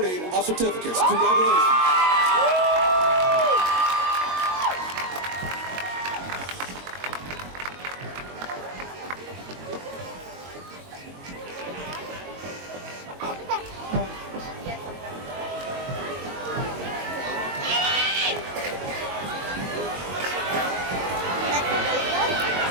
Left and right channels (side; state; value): left; late; 22 ms